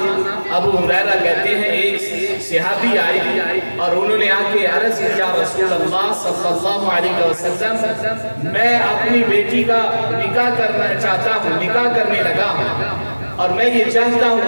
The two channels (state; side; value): inverted; both; correlation -1.00